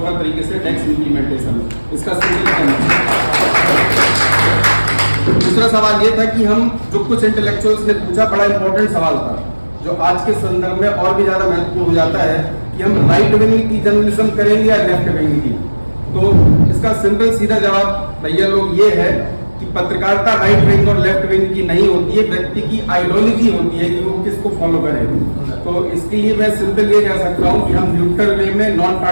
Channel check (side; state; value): both; inverted; correlation -1.00